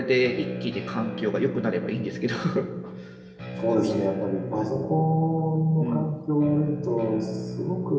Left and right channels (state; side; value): identical; both; correlation 1.00